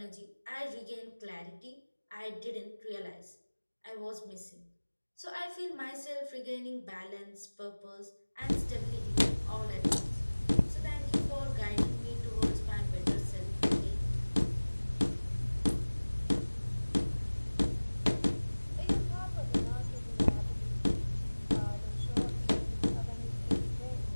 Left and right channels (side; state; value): both; inverted; correlation -1.00